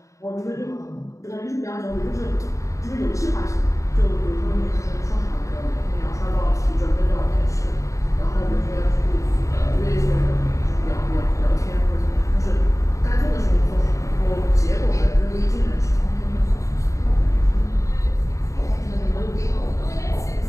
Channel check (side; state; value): right; late; 0.15 ms